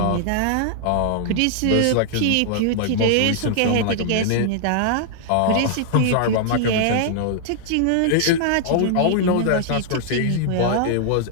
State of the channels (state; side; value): different; both; correlation -0.01